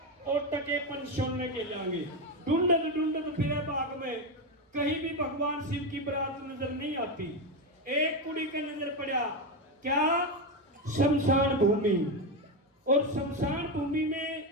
और टके पन छोड़ने के जाएंगे। ढूंढत ढूंढत फिरे बाग में कहीं भी भगवान शिव की बारात नजर नहीं आती। एक कुड़ी का नजर पड़ा, क्या? शमशान भूमि। और शमशान भूमि में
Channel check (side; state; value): both; normal; correlation 0.12